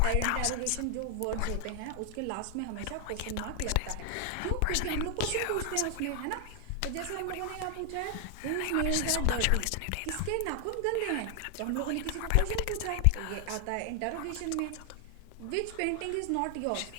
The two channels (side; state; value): both; different; correlation 0.00